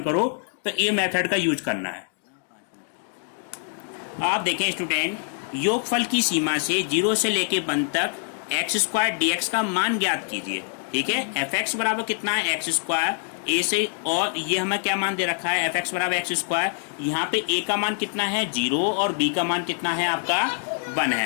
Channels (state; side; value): silent; right; 58 dB below the other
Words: करो, तो ये मेथड का यूज करना है। आप देखें स्टूडेंट, योगफल की सीमा से 0 से लेके 1 तक एक्स स्क्वायर डी एक्स का मान ज्ञात कीजिए। ठीक है, एफ एक्स बराबर कितना है एक्स स्क्वायर ए से, और ये हमें क्या मान दे रखा है एफ एक्स बराबर एक्स स्क्वायर। यहाँ पे ए का मान कितना है 0 और बी का मान कितना है आपका 1